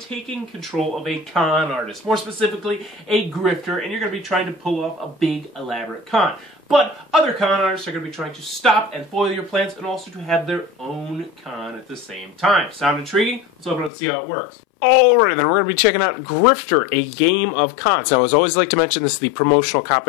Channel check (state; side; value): drops out; right; at 13.9 s